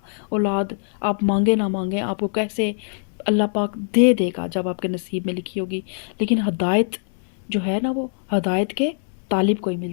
اولاد، آپ مانگے نہ مانگیں آپ کو کیسے اللہ پاک دے دے گا جب آپ کے نصیب میں لکھی ہوگی، لیکن ہدایت جو ہے نا وہ ہدایت کے طالب کو ہی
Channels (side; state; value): right; silent; digital silence